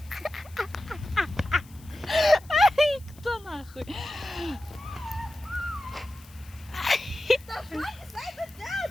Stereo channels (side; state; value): left; noise; hiss, 24 dB below the sound